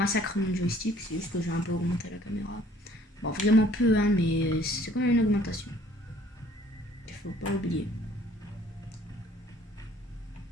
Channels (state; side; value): normal; both; correlation 0.57